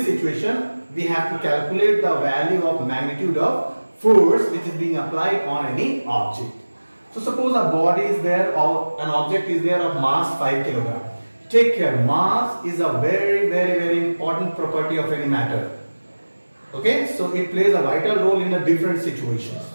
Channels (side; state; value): both; inverted; correlation -1.00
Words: situation we have to calculate the value of magnitude of force which is being applied on any object. So suppose a body is there or an object is there of mass 5 kg. Take care, mass is a very important property of any matter. Okay, so it plays a vital role in the different situations.